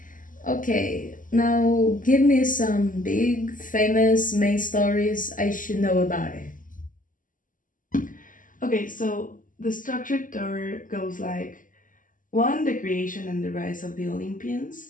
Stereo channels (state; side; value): late; right; 0.38 ms